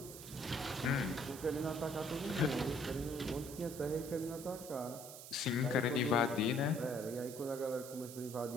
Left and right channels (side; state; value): right; noise; hiss, 12 dB below the sound